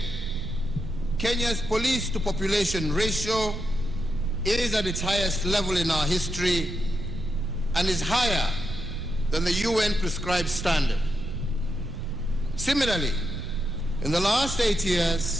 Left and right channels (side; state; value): right; noise; rumble, 8 dB below the sound